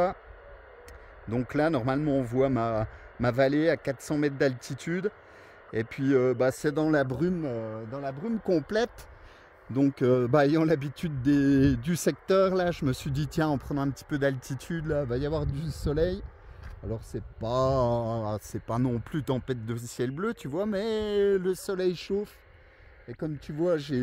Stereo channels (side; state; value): both; identical; correlation 1.00